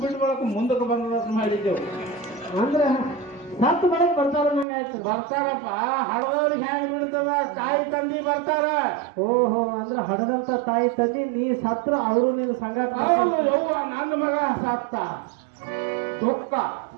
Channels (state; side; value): drops out; left; at 4.7 s